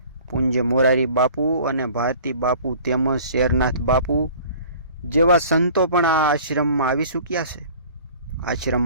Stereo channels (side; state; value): both; inverted; correlation -0.48